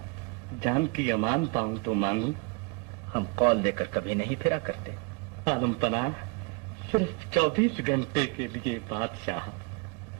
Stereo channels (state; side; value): quieter; left; 28.0 dB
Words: जान की अमान पाऊं तो मांगू। हम कौल देकर कभी नहीं फिरा करते। आलम पनाह सिर्फ 24 घंटे के लिए बादशाह।